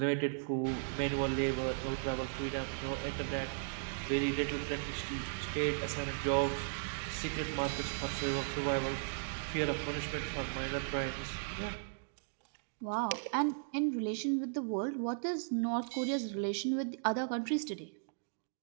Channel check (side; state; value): left; silent; digital silence